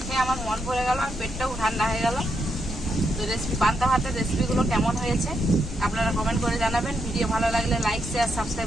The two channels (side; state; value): left; noise; rumble, 9 dB below the sound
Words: খেয়ে আমার মন ভরে গেল আর পেটটাও ঠান্ডা হয়ে গেল। তো পান্তা ভাতের রেসিপিগুলো কেমন হয়েছে আপনারা কমেন্ট করে জানাবেন। ভিডিও ভালো লাগলে লাইক, শেয়ার,